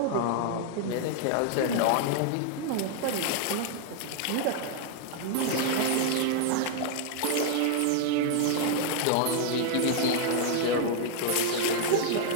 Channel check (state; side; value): different; both; correlation 0.00